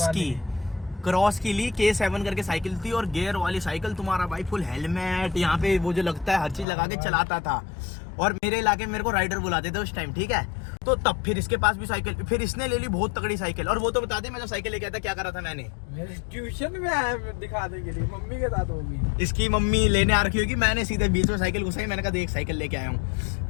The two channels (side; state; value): right; drops out; at 6.7 s